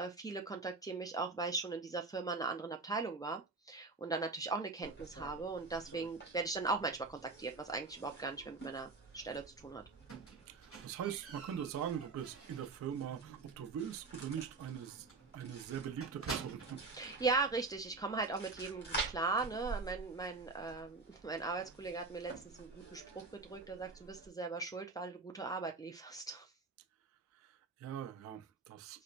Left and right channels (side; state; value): left; quieter; 4.0 dB